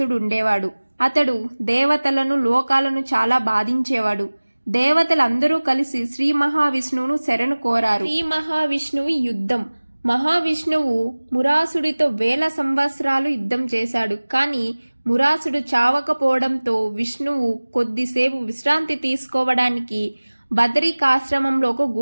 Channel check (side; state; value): both; inverted; correlation -1.00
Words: ఉండేవాడు. అతడు దేవతలను, లోకాలను చాలా బాధించేవాడు. దేవతలందరూ కలిసి శ్రీ మహావిష్ణువును శరణు కోరారు. శ్రీ మహావిష్ణువు యుద్ధం. మహావిష్ణువు మురాసుడితో 1000 సంవత్సరాలు యుద్ధం చేశాడు. కానీ మురాసుడు చావకపోవడంతో విష్ణువు కొద్దిసేపు విశ్రాంతి తీసుకోవడానికి బదరికాశ్రమంలో ఒక